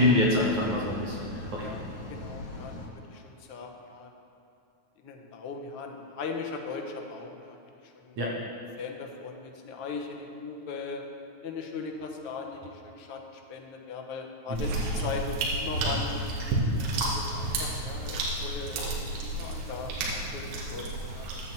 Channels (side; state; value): left; late; 9.4 ms